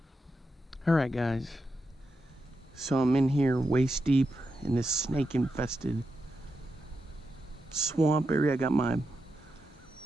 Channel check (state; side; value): normal; both; correlation 0.87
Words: Alright guys, so I'm in here waist deep in this snake infested swamp area. I got my